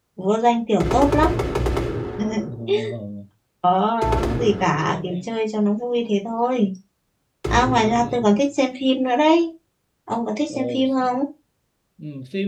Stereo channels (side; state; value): both; identical; correlation 1.00